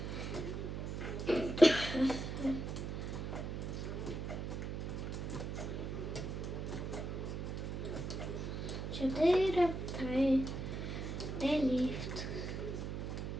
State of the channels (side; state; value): right; noise; hum, 4 dB below the sound